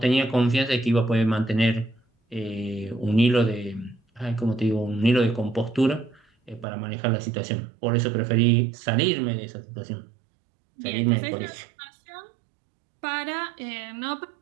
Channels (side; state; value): left; drops out; at 6.7 s